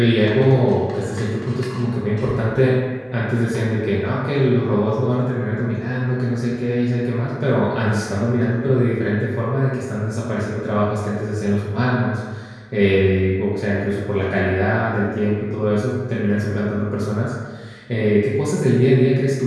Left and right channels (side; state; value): both; identical; correlation 1.00